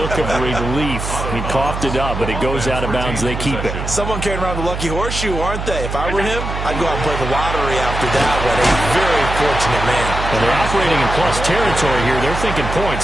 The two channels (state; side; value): noise; right; hum, 5 dB below the sound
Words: of relief. He coughed it up, but it goes out of bounds. They keep it. Someone carrying around the lucky horseshoe, aren't they? If I were him, I'd go out and play the lottery after that one. A very fortunate man. And they're operating in plus territory here. They're thinking points.